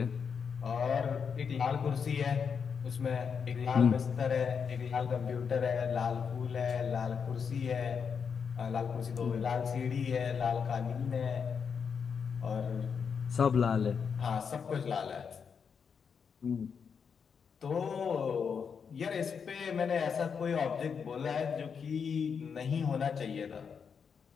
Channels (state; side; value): quieter; right; 6.4 dB